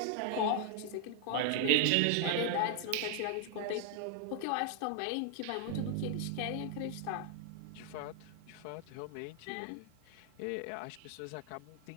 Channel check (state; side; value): different; both; correlation 0.00